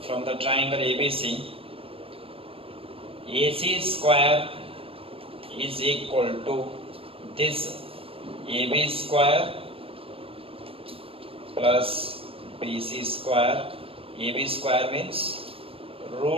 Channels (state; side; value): late; left; 0.27 ms